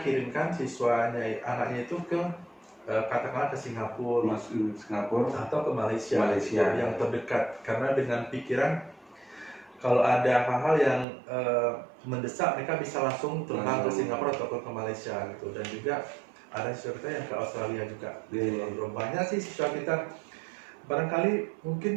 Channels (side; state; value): left; drops out; at 11.1 s